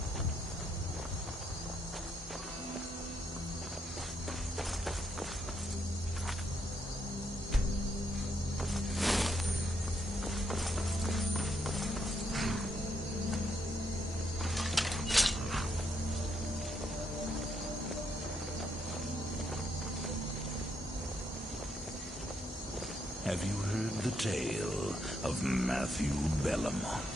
Have you heard the tale of Matthew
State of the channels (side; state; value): both; normal; correlation 0.77